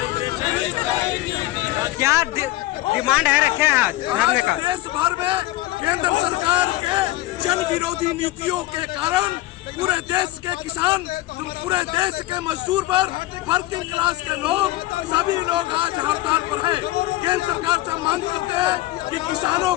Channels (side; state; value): right; quieter; 17.1 dB